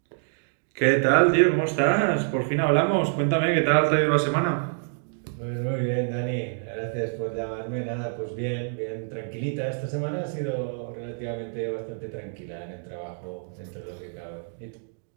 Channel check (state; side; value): silent; left; digital silence